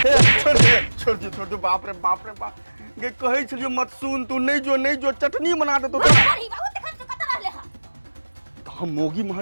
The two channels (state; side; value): inverted; both; correlation -1.00